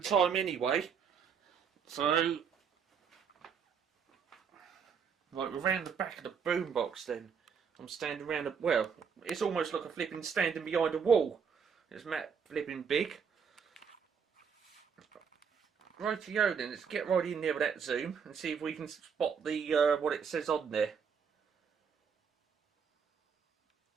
time anyway. So, right, we're around the back of the boombox then. I'm standing around the, well, it's almost like a flipping standing behind a wall. It's Matt flipping big. Rightio then, let's get right in there with that zoom and see if we can spot the what it says on there.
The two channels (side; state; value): left; quieter; 6.6 dB